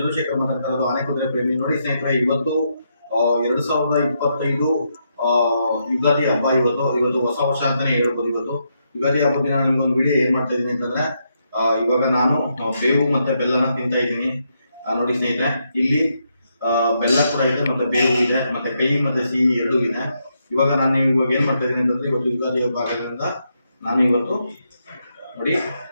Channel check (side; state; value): both; inverted; correlation -0.80